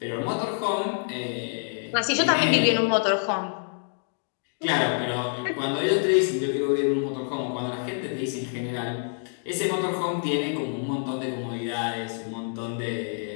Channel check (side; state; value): right; silent; digital silence